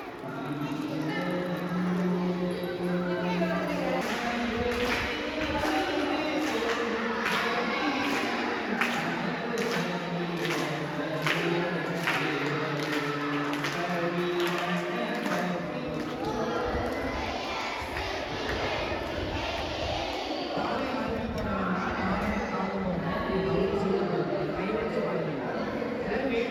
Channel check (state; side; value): identical; both; correlation 1.00